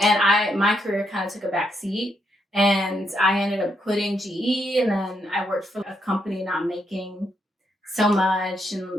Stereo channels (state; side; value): normal; both; correlation 0.78